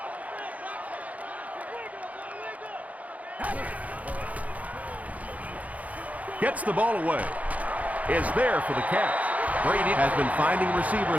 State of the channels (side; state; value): left; late; 0.071 ms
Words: Gets the ball away. Is there for the catch. Brady has been finding